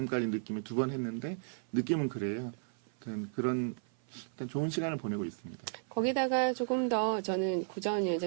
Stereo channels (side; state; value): left; silent; 55 dB below the other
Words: 느낌이 2번 했는데 느낌은 그래요. 그런 일단 좋은 시간을 보내고 있습니다. 거기다가 조금 더 저는 구자원